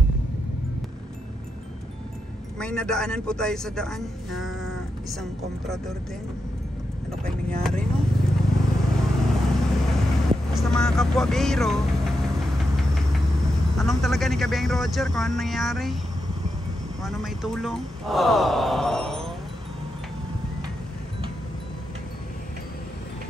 May nadaanan po tayo sa daan na isang komprador din. Ano kayong nangyari, no? Basta mga kapwa biro, tanong talaga ni Kabeng Roger kung ano nangyari, kung ano may tulong.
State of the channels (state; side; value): normal; both; correlation 0.86